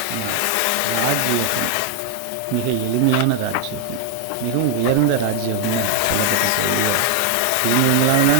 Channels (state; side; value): different; both; correlation 0.00